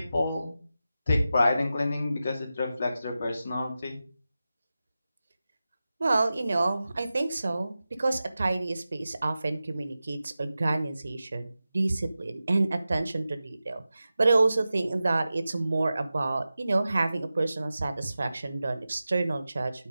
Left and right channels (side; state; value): both; inverted; correlation -0.94